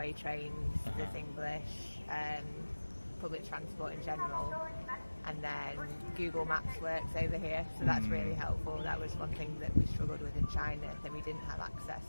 trains, there's English, public transport in general, and then Google Maps works over here, so that's really helpful. That was one thing that we struggled with in China, that we didn't have access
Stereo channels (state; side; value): inverted; both; correlation -1.00